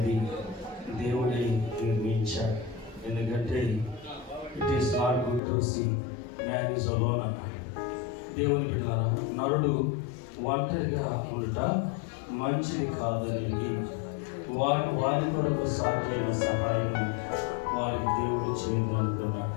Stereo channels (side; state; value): right; drops out; at 5.4 s